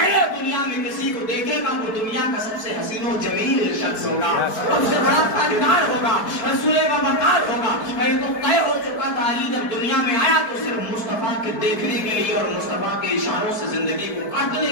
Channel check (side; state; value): right; late; 4.6 ms